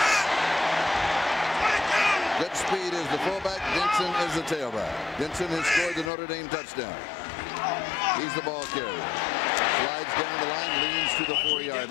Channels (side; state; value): right; drops out; at 6.1 s